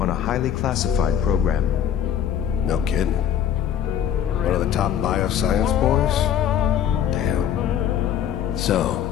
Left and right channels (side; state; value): right; quieter; 9.7 dB